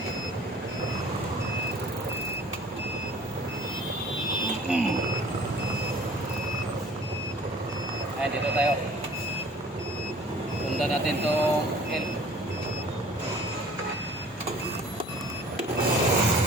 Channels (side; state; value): both; normal; correlation 0.50